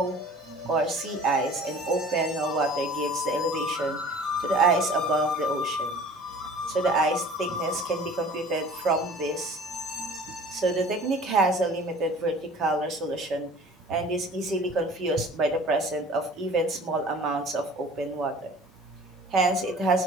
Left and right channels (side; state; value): both; normal; correlation 0.46